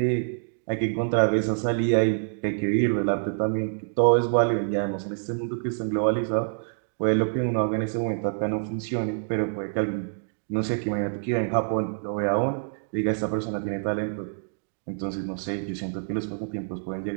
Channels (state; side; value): silent; left; digital silence